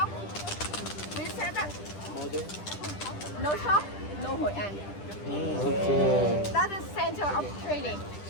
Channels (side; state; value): right; late; 10 ms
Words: We said that no shop, no Hoi An. Okay. That is center of trading.